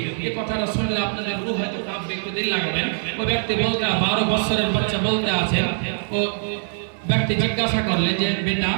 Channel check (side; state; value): left; silent; digital silence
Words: এই কথাটা শুনলে আপনাদের রূহ হয়তো কাঁপবে, একটু দিন লাগবেন। ও ব্যক্তি বলতে 12 বছরের বাচ্চা বলতে আছেন, ও ব্যক্তি জিজ্ঞাসা করলেন যে বেটা